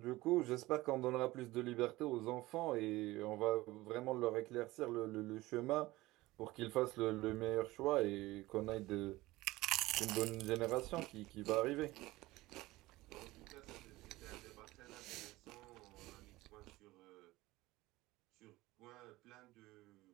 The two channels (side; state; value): left; quieter; 18.9 dB